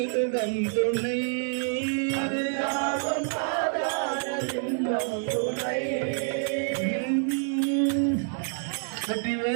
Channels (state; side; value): silent; left; 60 dB below the other